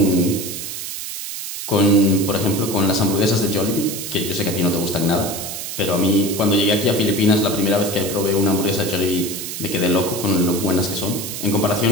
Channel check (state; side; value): noise; right; hiss, 7 dB below the sound